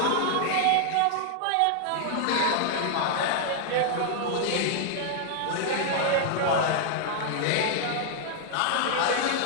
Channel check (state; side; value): different; both; correlation 0.00